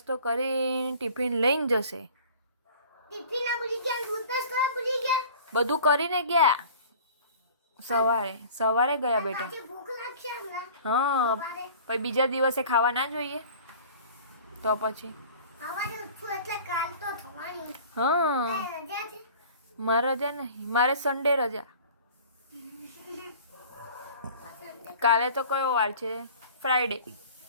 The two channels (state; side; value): inverted; both; correlation -0.45